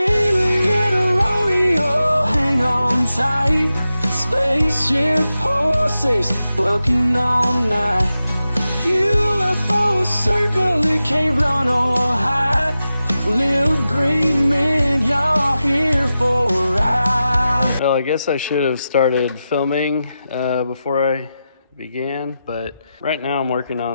in a rodeo, hang on tight. Spaceship horses bucking all night. UFO circle, it can't run or hide. Little green men, y'all here for a ride. Well, I guess I should have started filming before I began, but right now I'm working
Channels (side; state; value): both; inverted; correlation -0.91